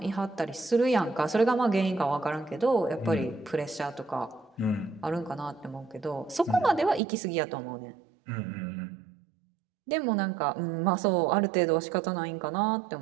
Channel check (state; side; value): drops out; left; at 7.0 s